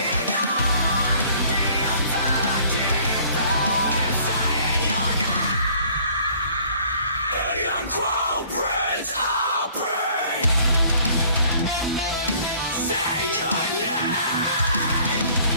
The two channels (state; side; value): inverted; both; correlation -0.56